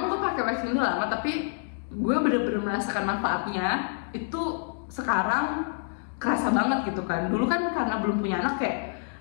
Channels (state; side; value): silent; right; digital silence